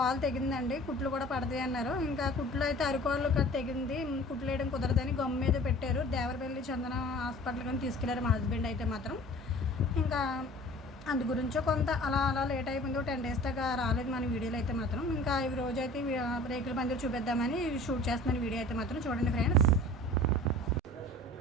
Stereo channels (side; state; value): both; normal; correlation 0.45